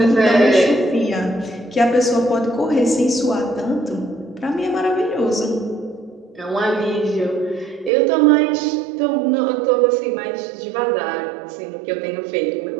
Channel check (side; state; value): left; drops out; at 7.9 s